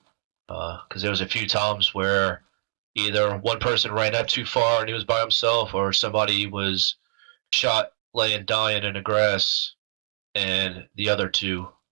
Because there was a few times where either one person ran up too far and he was by himself, or somebody was shot laying dying in the grass, and the other two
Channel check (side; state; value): left; silent; 62 dB below the other